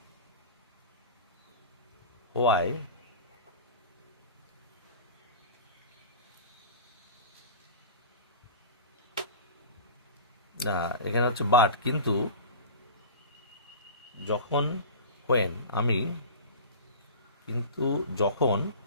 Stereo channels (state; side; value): inverted; both; correlation -0.35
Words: ওয়াই এখানে হচ্ছে বাট, কিন্তু যখন যখন